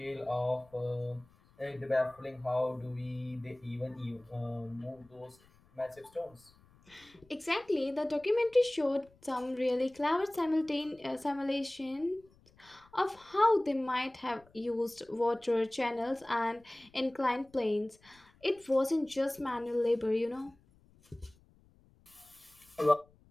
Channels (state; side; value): noise; left; rumble, 29 dB below the sound